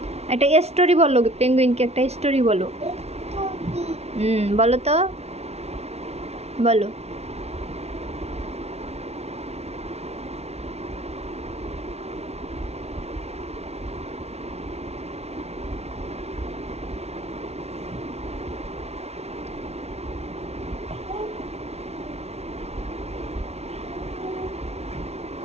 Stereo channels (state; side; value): late; left; 0.31 ms